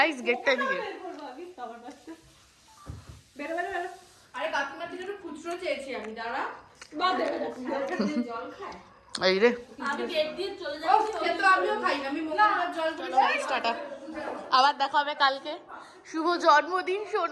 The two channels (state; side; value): identical; both; correlation 1.00